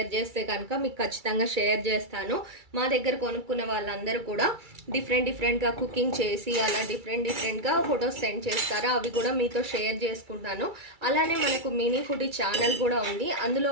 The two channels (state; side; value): late; left; 2.3 ms